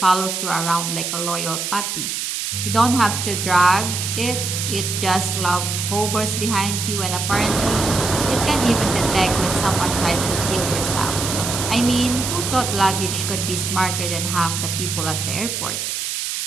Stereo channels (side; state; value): right; noise; hiss, 3 dB below the sound